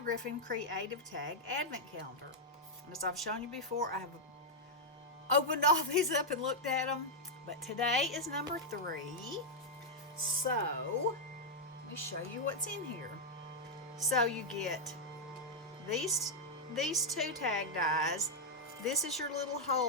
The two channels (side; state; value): both; normal; correlation -0.03